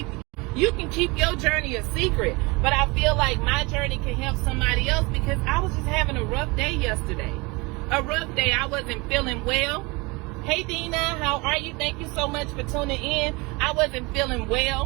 your journey a secret. But I feel like my journey can help somebody else, because I was just having a rough day yesterday. A rough day. I wasn't feeling well. Hey Dina, how are you? Thank you so much for tuning in. I wasn't feeling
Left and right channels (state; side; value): quieter; left; 25.8 dB